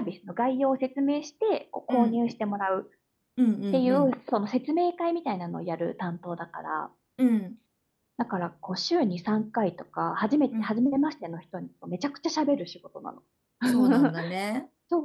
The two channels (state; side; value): identical; both; correlation 1.00